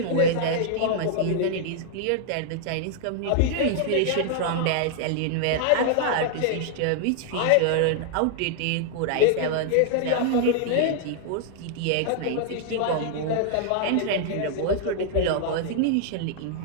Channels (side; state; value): both; different; correlation -0.01